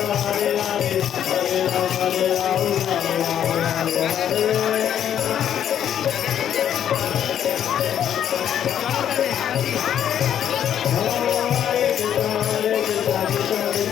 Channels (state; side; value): quieter; right; 9.8 dB